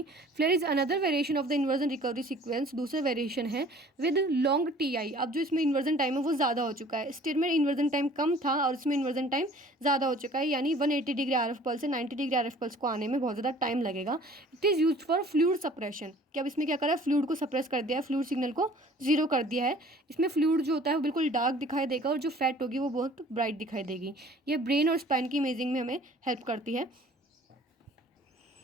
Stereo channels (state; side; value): normal; both; correlation 0.51